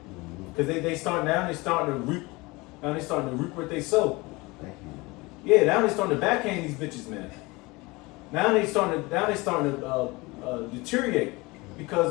Because they starting to reap. Now they starting to reap what they sow. Yeah, now they starting to backhand these bitches, man. Now they starting to deteriorate,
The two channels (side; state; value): right; quieter; 23.6 dB